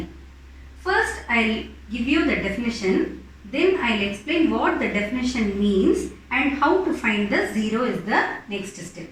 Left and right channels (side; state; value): both; identical; correlation 1.00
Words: First I'll give you the definition. Then I'll explain what the definition means and how to find the zero is the next step.